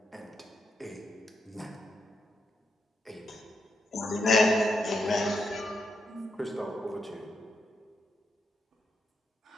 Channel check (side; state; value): both; normal; correlation 0.82